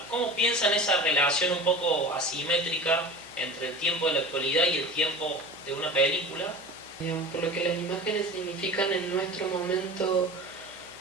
¿cómo piensan esa relación un poco asimétrica entre el tiempo de la actualidad y el tiempo de una película? Digamos, por lo que las imágenes significan en nuestro momento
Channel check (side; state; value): right; noise; hum, 30 dB below the sound